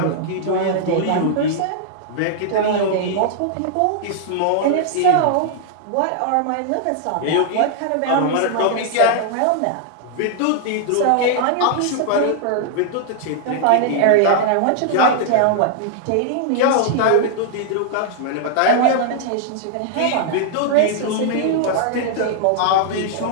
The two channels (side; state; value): both; different; correlation -0.01